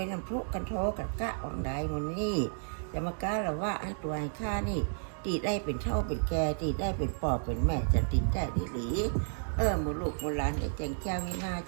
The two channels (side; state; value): left; silent; digital silence